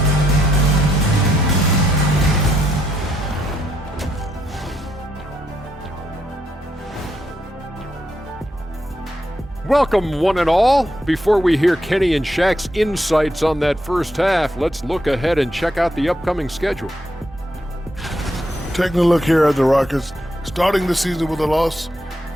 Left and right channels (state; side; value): normal; both; correlation 0.78